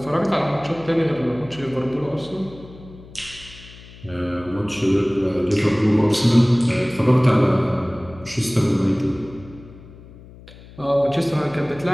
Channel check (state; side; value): noise; left; hum, 20 dB below the sound